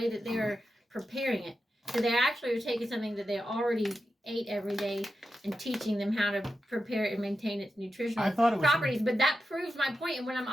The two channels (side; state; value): both; normal; correlation 0.90